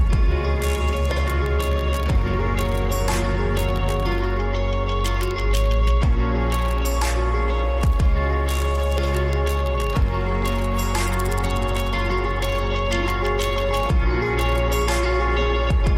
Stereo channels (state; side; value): identical; both; correlation 1.00